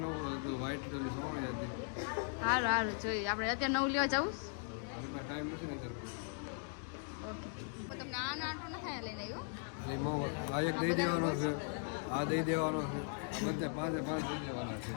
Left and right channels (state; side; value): silent; right; 52 dB below the other